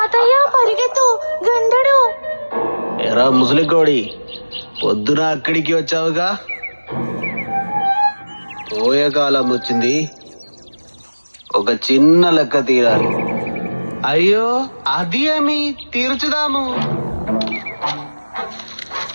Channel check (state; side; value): inverted; both; correlation -1.00